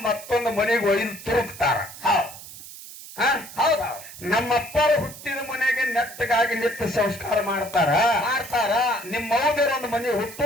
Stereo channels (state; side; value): noise; right; hiss, 15 dB below the sound